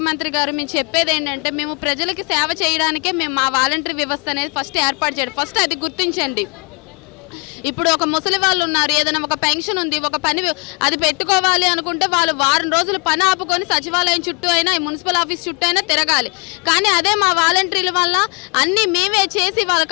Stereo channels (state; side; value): quieter; right; 34.5 dB